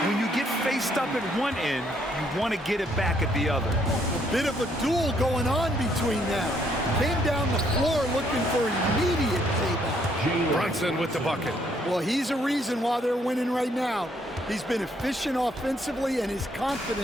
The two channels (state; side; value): normal; both; correlation 0.69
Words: When you get faced up at one end, you want to get it back at the other. A bit of a duel going on between them. Came down the floor looking for immediate payback. Brunson with the bucket. Well, he's a reason why they're winning right now. He's been efficient offensively, and his